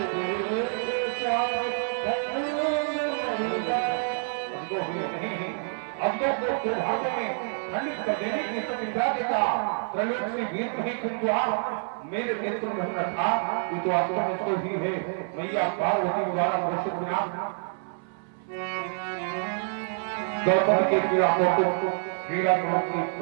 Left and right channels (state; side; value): silent; left; 60 dB below the other